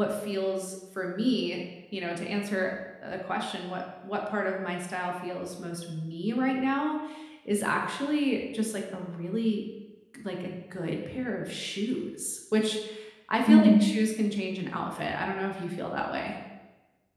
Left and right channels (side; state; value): both; identical; correlation 1.00